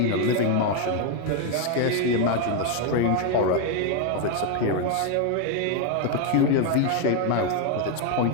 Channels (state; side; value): different; both; correlation 0.01